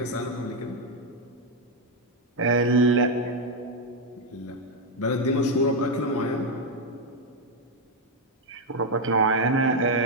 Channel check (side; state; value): both; normal; correlation 0.03